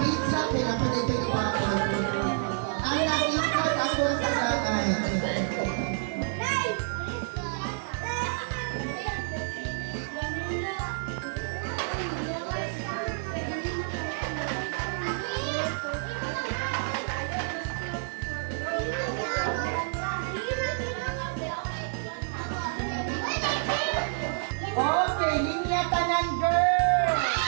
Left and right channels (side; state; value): left; silent; 59 dB below the other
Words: pinapalit yung iba ko. Ang nag-import akong tagal. Okay, linya tanan girl!